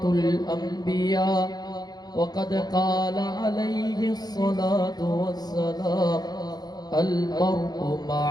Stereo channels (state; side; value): late; right; 0.19 ms